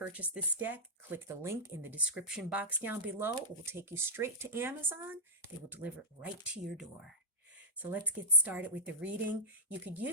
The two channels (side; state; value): both; normal; correlation -0.18